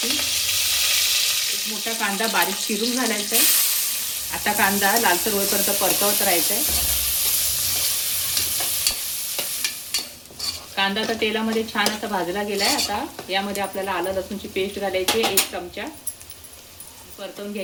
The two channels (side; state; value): both; identical; correlation 1.00